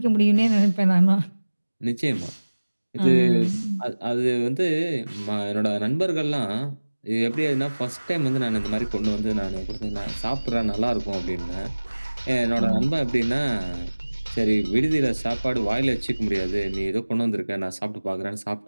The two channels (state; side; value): inverted; both; correlation -1.00